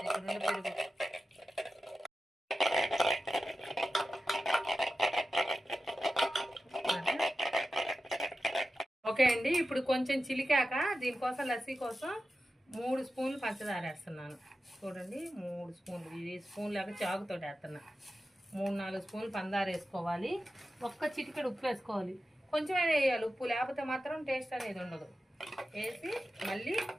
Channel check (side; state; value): both; normal; correlation 0.92